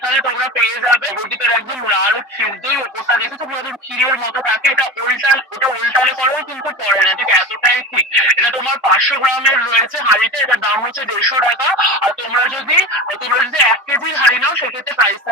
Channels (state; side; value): normal; both; correlation 0.28